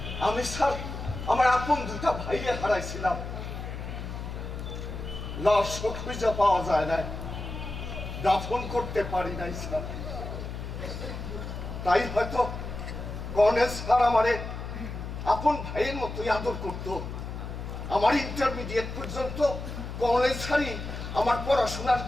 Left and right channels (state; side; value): noise; left; hum, 7 dB below the sound